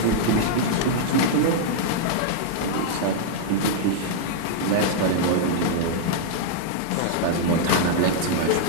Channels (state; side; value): different; both; correlation -0.01